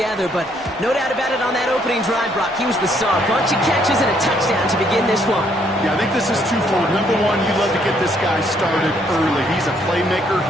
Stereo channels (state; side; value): normal; both; correlation 0.69